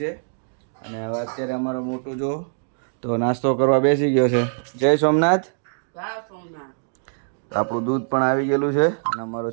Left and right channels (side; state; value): left; silent; digital silence